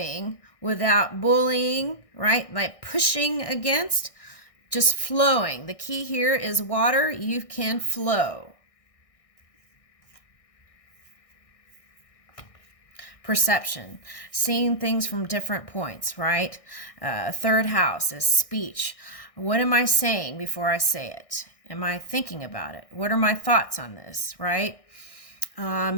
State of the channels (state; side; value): late; right; 1.6 ms